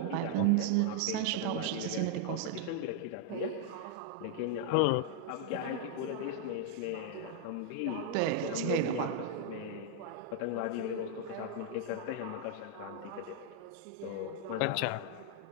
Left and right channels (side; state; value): both; different; correlation 0.00